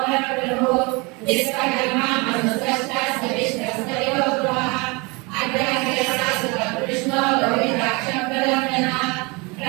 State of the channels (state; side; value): quieter; left; 27.6 dB